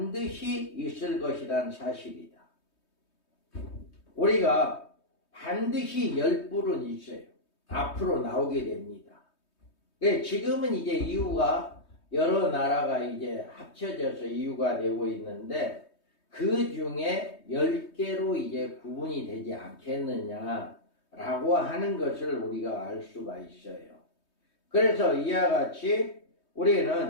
있을 것이라는 사실이다. 우리가 반드시 10뿔은 있어요. 앞으로 나오게 됩니다. 지금은 이제 이유가 여러 나라가 이제 합쳐져서 이유가 되고 있는데 그 중에 10개로 이제 구분이 되지 않겠느냐라고 하는 것을 우리가 알 수가 있어요. 그래서 이와 같이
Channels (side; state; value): right; late; 3.2 ms